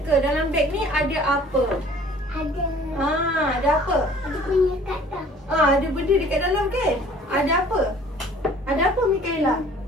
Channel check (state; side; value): normal; both; correlation 0.52